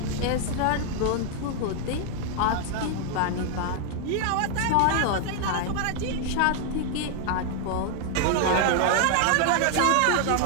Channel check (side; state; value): both; different; correlation 0.00